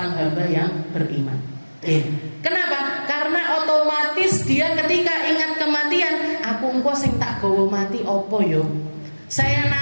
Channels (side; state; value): both; inverted; correlation -1.00